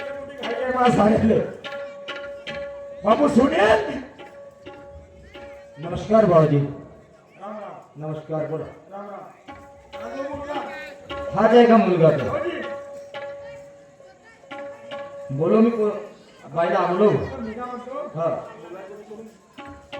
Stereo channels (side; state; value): both; identical; correlation 1.00